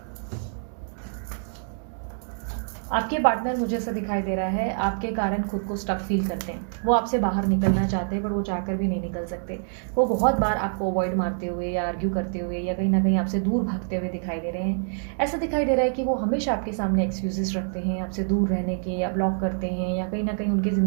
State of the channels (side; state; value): left; silent; digital silence